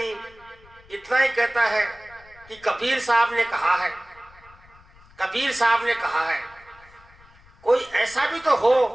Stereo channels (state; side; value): noise; left; rumble, 26 dB below the sound